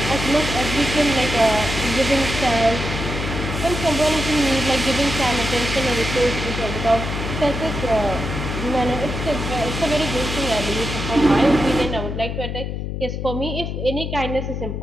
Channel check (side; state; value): left; noise; hum, 4 dB below the sound